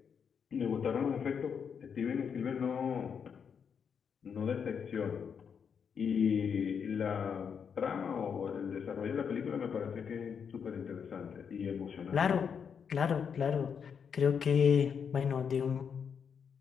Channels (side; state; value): right; quieter; 6.9 dB